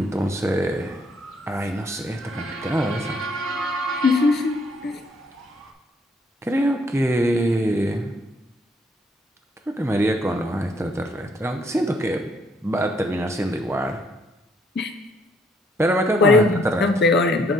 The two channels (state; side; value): normal; both; correlation 0.68